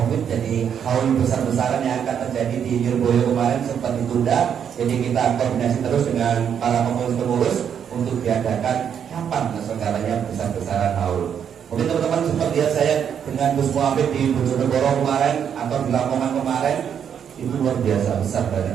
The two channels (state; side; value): quieter; left; 8.2 dB